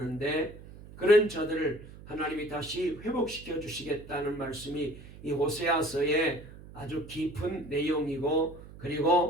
그런 저들을 하나님이 다시 회복시켜 주시겠다는 말씀이 이 호세아서의 아주 깊은 내용이고,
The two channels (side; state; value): right; noise; hum, 17 dB below the sound